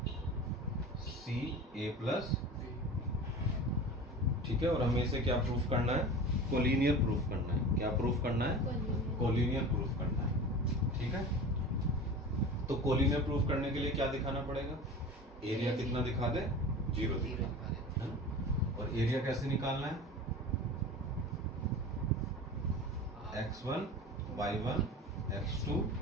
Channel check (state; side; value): normal; both; correlation 0.34